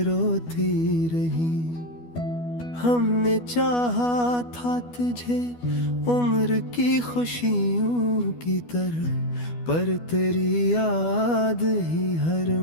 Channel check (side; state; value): right; late; 12 ms